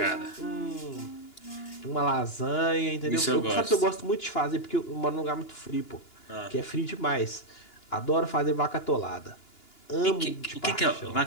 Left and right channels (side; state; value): right; late; 2.9 ms